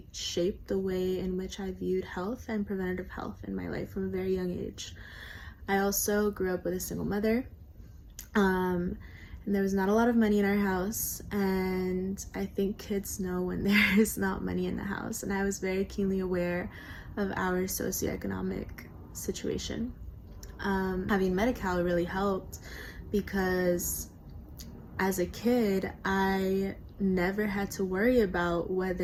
shaped the way in which I viewed health and preventative health in my life from a very young age. I also grew up with a single mother. And there was not a lot of money in our house, and I think kids know when there is not money in the house, and I was very keenly aware of our socioeconomic situation. Having Medi-Cal really helped because as a kid, I never had to worry about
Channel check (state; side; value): identical; both; correlation 1.00